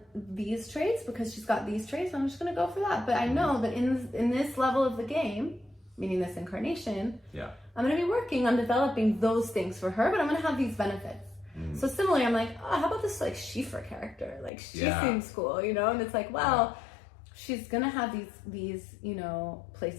these traits because she's got these traits. I'm just gonna go for that. But I know that in this level of the game, meaning this incarnation, I'm gonna be working on developing those things for her, but I'm gonna have these benefits. So similarly, I'm like, oh, how about this like Sheefra character? Like, she seems cool, you know? And it's like, well, she's gonna have these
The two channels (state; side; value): drops out; right; at 14.5 s